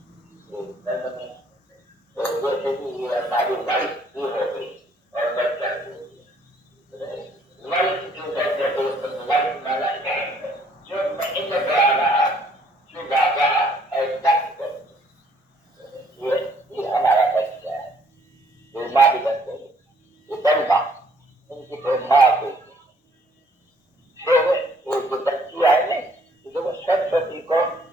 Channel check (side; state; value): both; normal; correlation 0.63